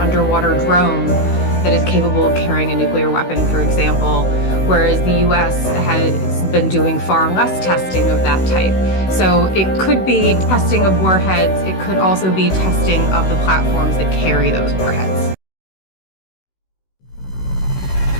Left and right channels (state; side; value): late; right; 16 ms